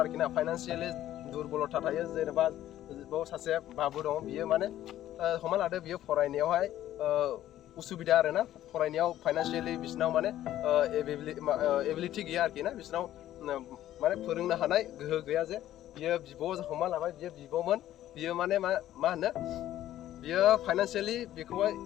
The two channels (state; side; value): quieter; right; 12.9 dB